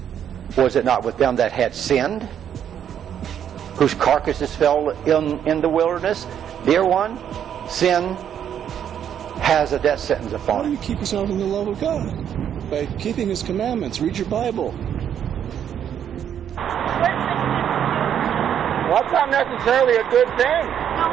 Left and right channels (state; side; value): quieter; left; 9.2 dB